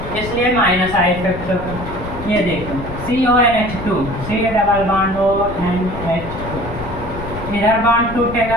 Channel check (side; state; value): left; noise; rumble, 10 dB below the sound